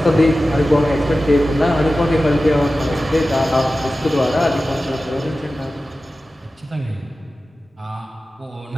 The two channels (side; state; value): both; normal; correlation 0.95